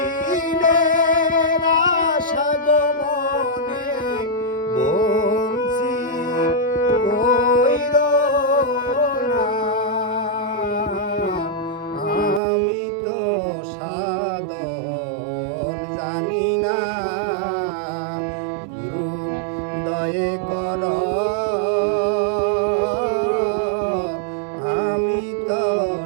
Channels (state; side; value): drops out; left; at 12.4 s